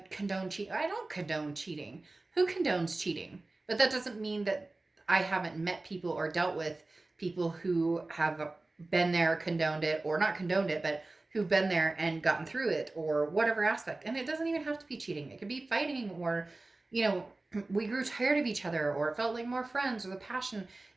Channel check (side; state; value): left; quieter; 3.1 dB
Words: cheating. I don't condone cheating. Who condones cheating? But that doesn't mean that I haven't met people or dealt with people who have been there, condoned it, or not condoned it, but who've been there and gotten through it, or whatever aspect. And it doesn't even have to be cheating. It could be fighting, or, we grew tired of each other, or it felt like more friends, or the passion.